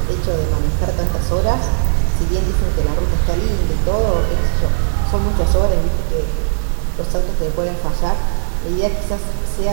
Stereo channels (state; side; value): silent; left; digital silence